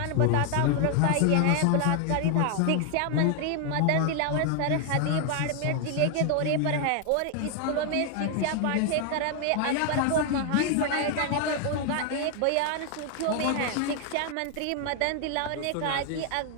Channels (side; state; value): both; different; correlation 0.00